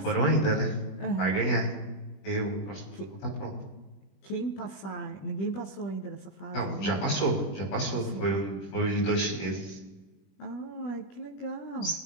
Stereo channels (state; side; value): late; right; 21 ms